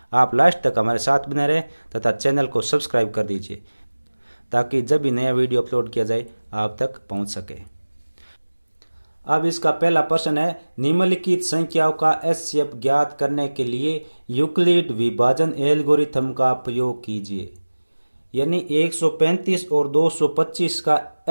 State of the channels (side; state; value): both; inverted; correlation -1.00